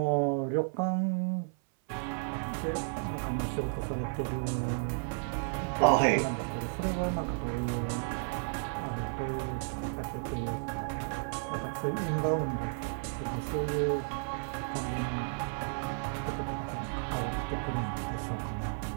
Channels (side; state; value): left; silent; 55 dB below the other